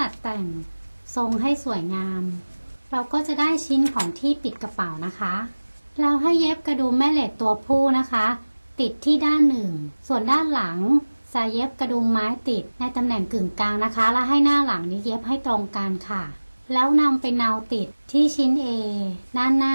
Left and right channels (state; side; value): inverted; both; correlation -1.00